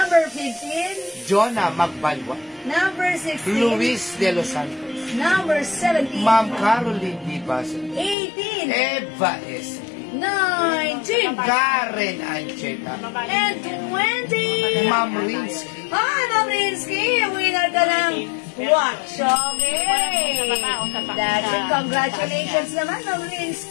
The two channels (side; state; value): right; drops out; at 8.2 s